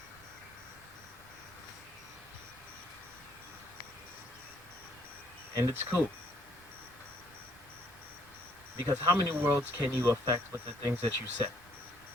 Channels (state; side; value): noise; right; rumble, 24 dB below the sound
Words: And it's cool. Because how many worlds can you affect with the things that you say?